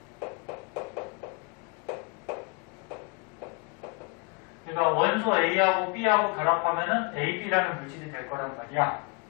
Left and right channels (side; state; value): right; quieter; 32.3 dB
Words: 그러니까 원소 A하고 B하고 결합하면은 AB라는 물질이 될 거란 말이야.